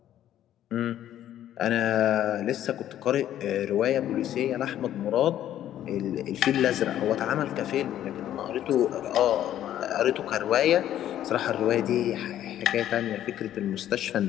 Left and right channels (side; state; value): right; quieter; 11.8 dB